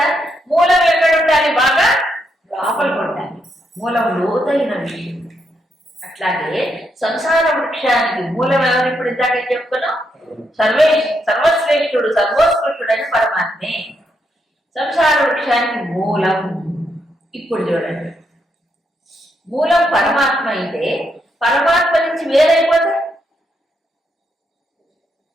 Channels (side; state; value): both; normal; correlation 0.79